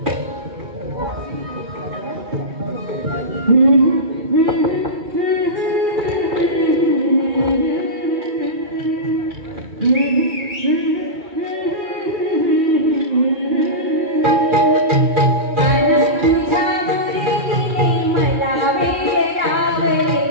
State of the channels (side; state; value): left; late; 2.3 ms